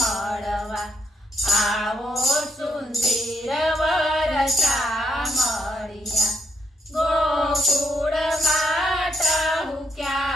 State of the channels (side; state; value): both; normal; correlation 0.76